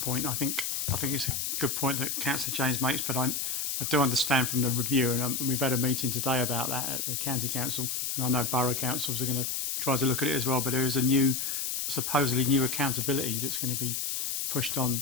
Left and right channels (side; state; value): left; noise; hiss, 1 dB below the sound